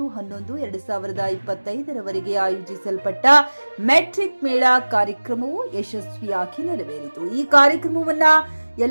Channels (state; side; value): inverted; both; correlation -1.00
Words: ರವರೆಗೆ ಆಯೋಜಿಸಲ್ಪಟ್ಟ ಮೆಟ್ರಿಕ್ ಮೇಳ ಕಾರ್ಯಕ್ರಮವು ಯಶಸ್ವಿಯಾಗಿ ನೆರವೇರಿತು. ಈ ಕಾರ್ಯಕ್ರಮವನ್ನು